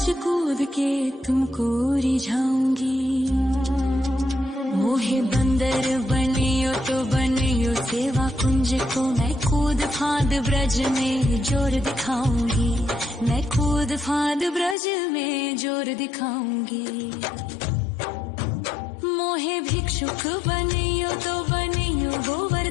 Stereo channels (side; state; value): right; drops out; at 14.8 s